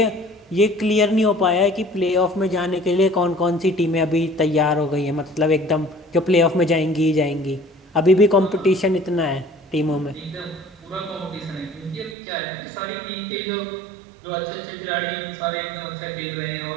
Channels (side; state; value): left; drops out; at 12.2 s